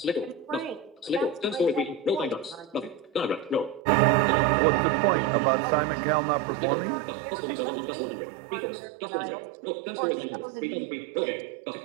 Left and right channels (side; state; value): left; drops out; at 3.8 s